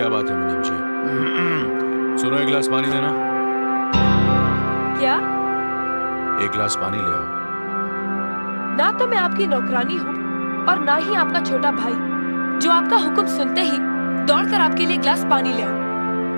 बात है मुनीम जी? सुनो, 1 गिलास पानी देना। क्या? 1 गिलास पानी ले आओ। ना तो मैं आपकी नौकरानी हूँ और ना ही आपका छोटा भाई जो आपका हुक्म सुनते ही दौड़कर आपके लिए गिलास पानी ले आओ।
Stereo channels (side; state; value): both; inverted; correlation -1.00